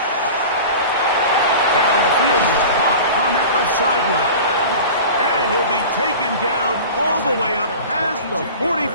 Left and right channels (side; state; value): both; inverted; correlation -0.36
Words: Down the field, caught on that left sideline. And he'll be taken down all the way up past the